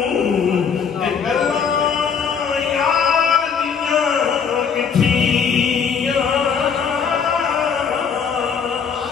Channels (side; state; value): right; quieter; 6.6 dB